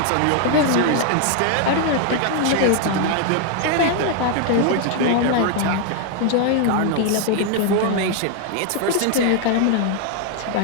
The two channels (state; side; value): different; both; correlation 0.00